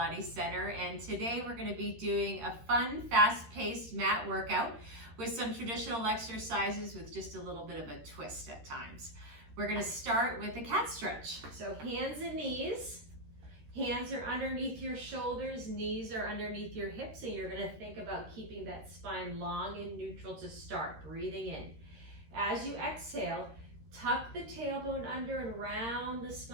Center, and today we're going to be doing a fun, fast-paced mat workout with some traditional exercises with just a little bit of a twist at times. We're going to start with a cat stretch. So hands and knees. Hands are underneath your shoulders, knees are underneath your hips, and you're going to think about keeping that spine long and neutral to start, breathing in. As you exhale, tuck the tailbone under and round the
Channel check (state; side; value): late; left; 13 ms